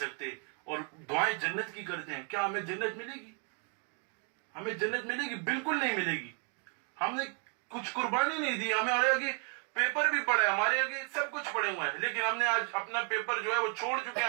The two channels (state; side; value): quieter; left; 38.6 dB